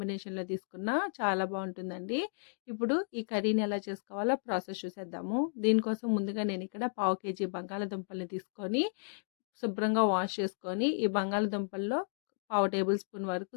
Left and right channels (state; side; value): silent; right; digital silence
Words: తీసుకున్నా చాలా బావుంటుందండి. ఇప్పుడు ఈ కర్రీని ఎలా చేసుకోవాలో ప్రాసెస్ చూసేద్దాము. దీనికోసం ముందుగా నేనిక్కడ పావు కేజీ బంగాళదుంపల్ని తీసుకొని శుభ్రంగా వాష్ చేసుకొని, ఈ బంగాళదుంపల్లో పావు టేబుల్ స్పూన్ వరకు